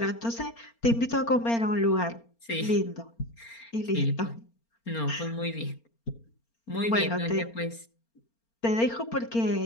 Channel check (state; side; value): late; right; 4.3 ms